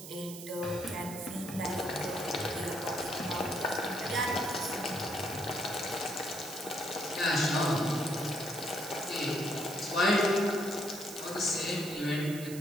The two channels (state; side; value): noise; right; hiss, 12 dB below the sound